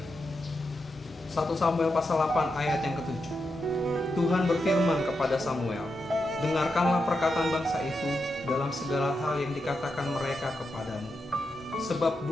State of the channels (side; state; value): both; normal; correlation 0.86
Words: Samuel pasal 8 ayat yang ke-7. Tuhan berfirman kepada Samuel, "Dengarkanlah perkataan bangsa itu dalam segala hal yang dikatakan mereka kepadamu. Sebab